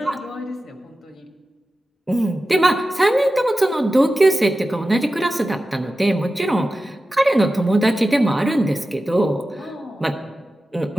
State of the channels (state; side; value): normal; both; correlation 0.94